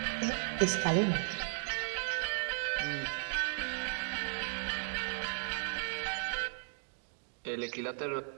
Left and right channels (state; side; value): silent; left; digital silence